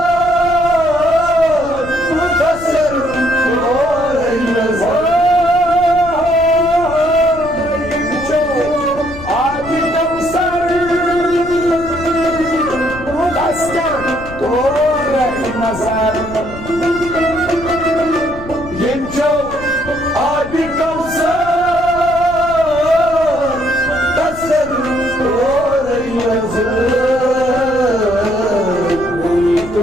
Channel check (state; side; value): noise; left; rumble, 14 dB below the sound